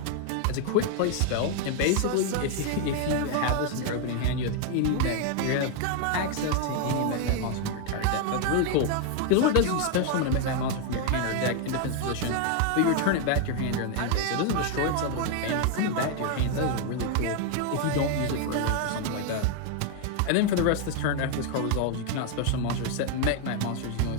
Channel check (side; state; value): both; different; correlation 0.00